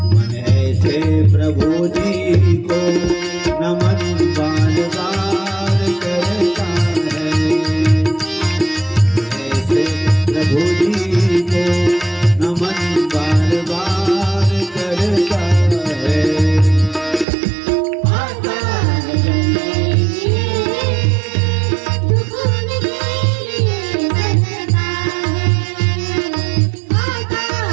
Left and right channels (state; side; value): drops out; left; at 17.2 s